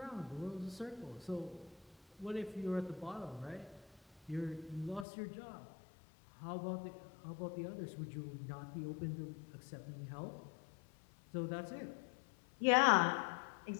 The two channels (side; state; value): right; drops out; at 5.1 s